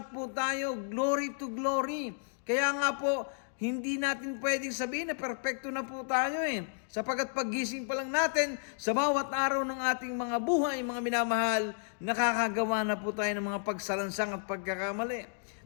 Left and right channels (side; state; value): right; silent; digital silence